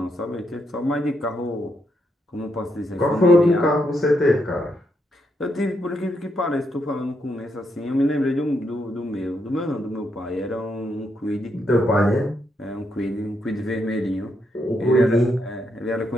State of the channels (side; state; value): both; normal; correlation 0.79